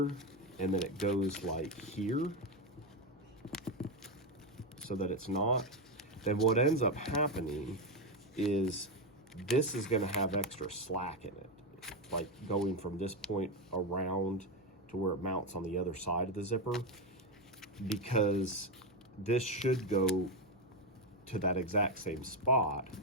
and then it goes like here, so that it's not, then what ends up happening is this is going to have extra slack in it, like going from this point around to where it mounts on the other side of the zipper, because this should go to that exact same spot.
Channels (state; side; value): noise; left; hum, 28 dB below the sound